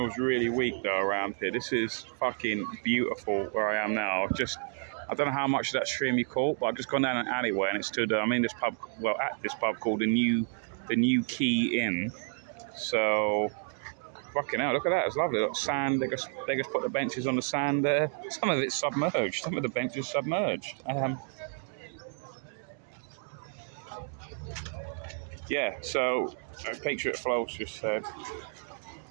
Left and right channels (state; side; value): silent; left; 57 dB below the other